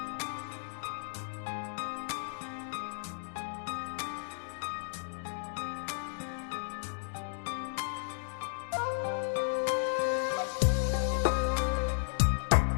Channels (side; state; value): right; silent; digital silence